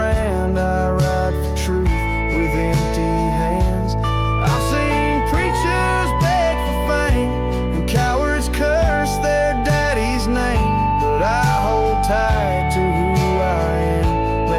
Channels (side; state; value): both; identical; correlation 1.00